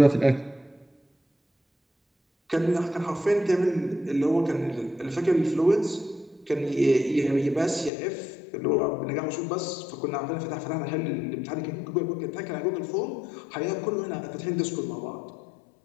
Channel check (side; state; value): right; drops out; at 7.9 s